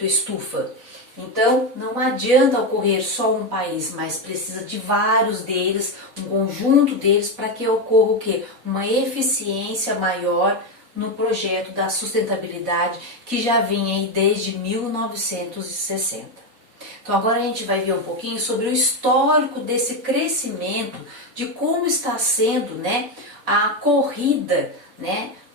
estufa. Então, não adianta ocorrer só um país, mas precisa de vários deles, um conjunto deles, para que ocorra o quê? Uma eficiência maior no projeto da sustentabilidade, que já vem aí desde 1960. Então agora a gente vai ver um pouquinho sobre o histórico desse crescimento, de como está sendo, né, a corrida, né,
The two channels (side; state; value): left; late; 4.1 ms